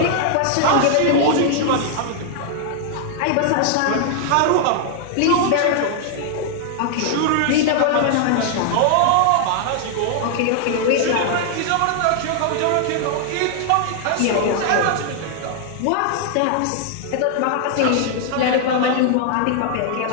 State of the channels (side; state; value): both; different; correlation 0.00